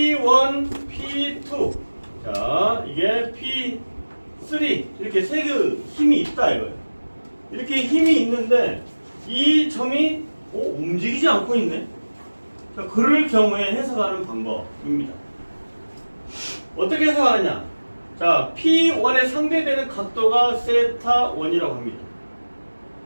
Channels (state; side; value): inverted; both; correlation -1.00